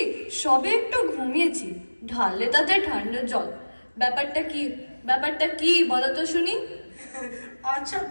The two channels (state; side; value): inverted; both; correlation -1.00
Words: সবে একটু ঘুমিয়েছি, ঢাললে তাতে ঠান্ডা জল। ব্যাপারটা কি বলো তো শুনি। আচ্ছা